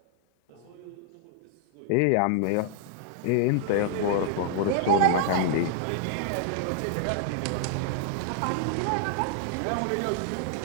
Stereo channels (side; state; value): both; different; correlation -0.01